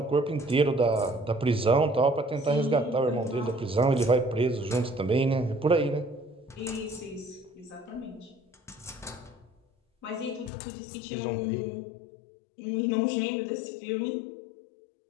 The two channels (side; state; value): right; drops out; at 10.5 s